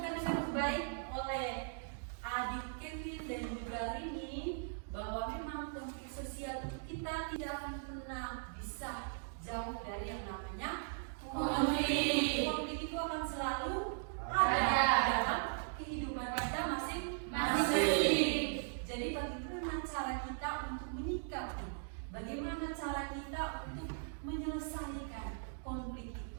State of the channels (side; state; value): left; silent; digital silence